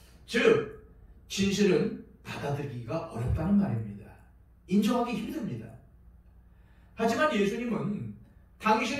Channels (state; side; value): identical; both; correlation 1.00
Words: 즉, 진실은 받아들이기가 어렵다는 말입니다. 인정하기 힘듭니다. 하지만 예수님은